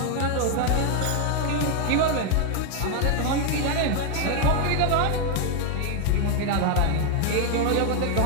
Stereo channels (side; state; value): both; different; correlation 0.01